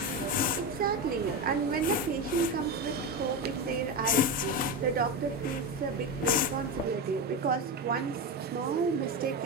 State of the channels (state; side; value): normal; both; correlation 0.17